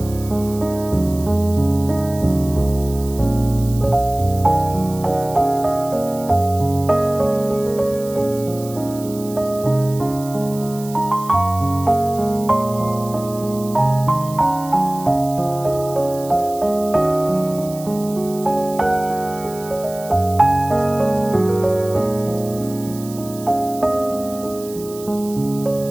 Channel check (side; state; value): right; noise; hiss, 17 dB below the sound